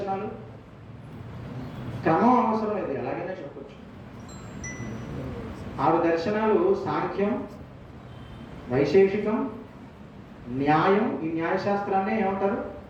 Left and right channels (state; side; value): identical; both; correlation 1.00